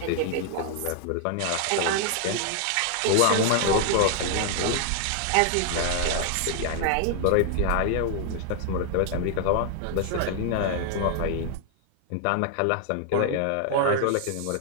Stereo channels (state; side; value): different; both; correlation 0.00